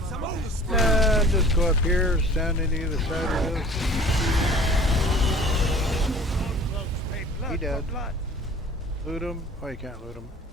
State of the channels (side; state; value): both; normal; correlation 0.47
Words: And just go up here, stand on either side of this. He dead. Loot him. Oh, you can't loot him.